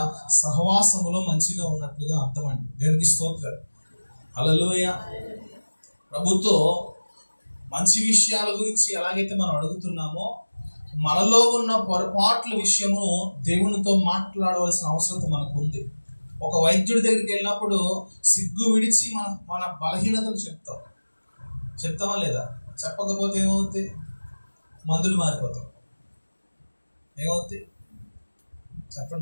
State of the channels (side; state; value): both; inverted; correlation -1.00